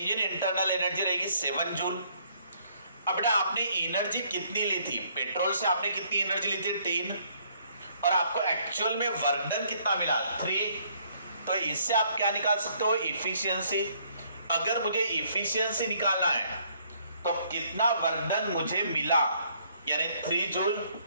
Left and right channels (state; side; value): inverted; both; correlation -0.66